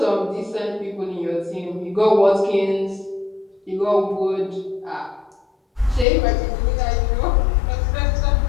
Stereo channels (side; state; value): right; drops out; at 6.1 s